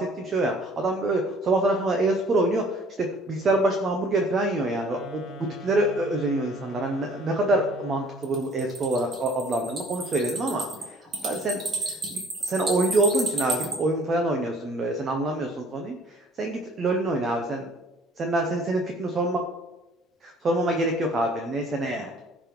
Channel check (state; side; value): normal; both; correlation 0.54